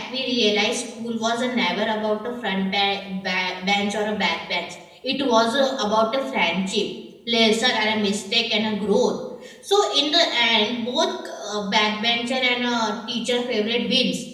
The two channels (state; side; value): identical; both; correlation 1.00